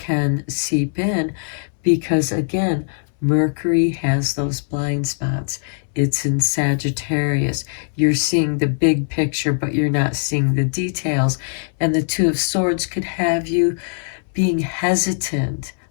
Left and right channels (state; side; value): silent; right; digital silence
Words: seep in because, again, Mercury has those blind spots. It's in Sagittarius. You're seeing the big picture, but you're not seeing the details. And the Two of Swords could have you being hesitant